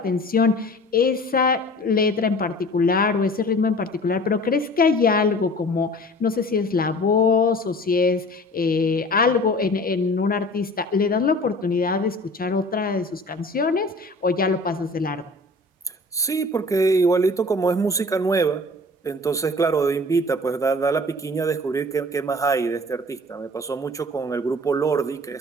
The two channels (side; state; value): both; normal; correlation 0.44